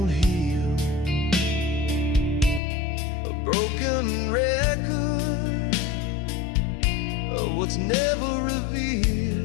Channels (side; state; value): right; drops out; at 2.6 s